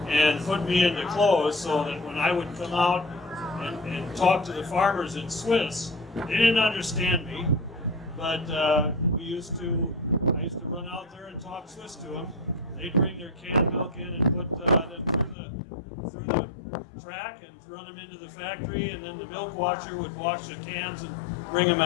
and put me into clothes, so that when I would come out and talk to the farmers in Swiss, they didn't understand me, but I used to run out there and talk Swiss to them. They'd bring their canned milk in and put them through the track and run them into the factory, and then the milk washer would wash the cans and bring them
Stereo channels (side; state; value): right; drops out; at 15.4 s